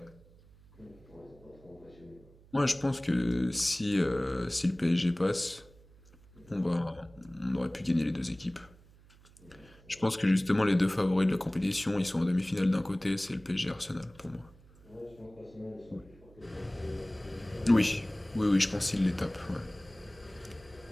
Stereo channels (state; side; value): noise; right; hum, 25 dB below the sound